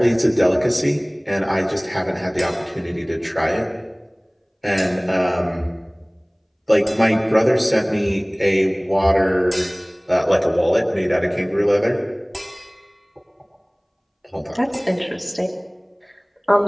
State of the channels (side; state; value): both; identical; correlation 1.00